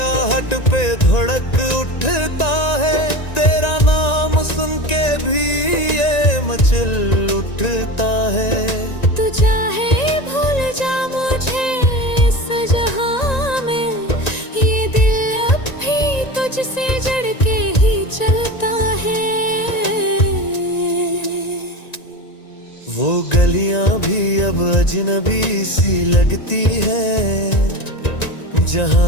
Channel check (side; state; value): right; late; 1.9 ms